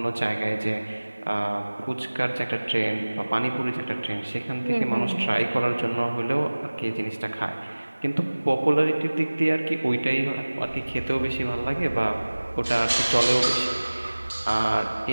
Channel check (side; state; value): both; inverted; correlation -1.00